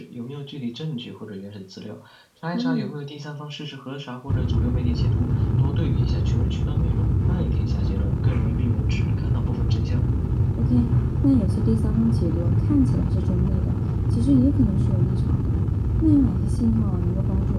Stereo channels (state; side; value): identical; both; correlation 1.00